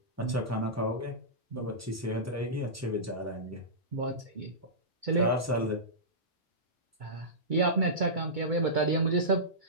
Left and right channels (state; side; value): normal; both; correlation -0.18